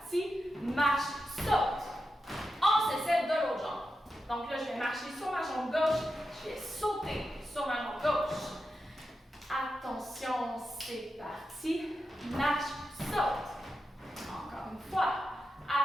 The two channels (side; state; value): both; normal; correlation 0.89